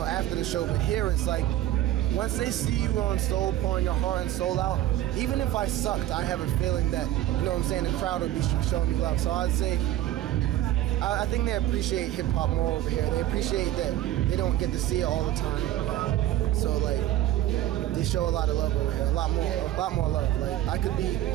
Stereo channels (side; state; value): left; quieter; 13.7 dB